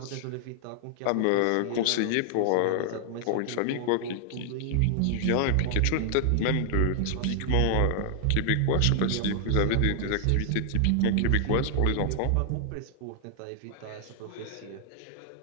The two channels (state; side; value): different; both; correlation -0.01